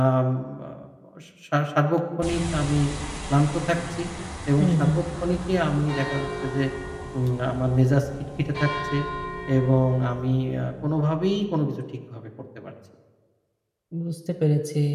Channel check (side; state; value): both; identical; correlation 1.00